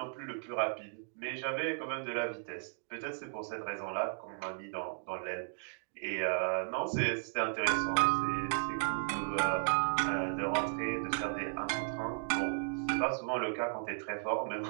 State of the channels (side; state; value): left; silent; digital silence